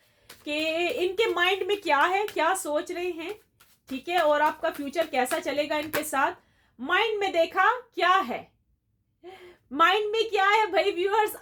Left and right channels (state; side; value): identical; both; correlation 1.00